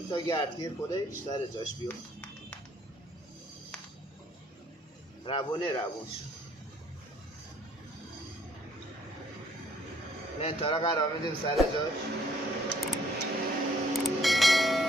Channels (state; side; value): normal; both; correlation 0.63